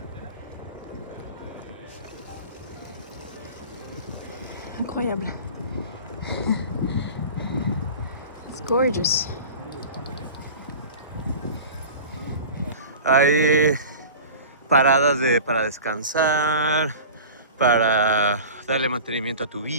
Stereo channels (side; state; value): both; inverted; correlation -0.37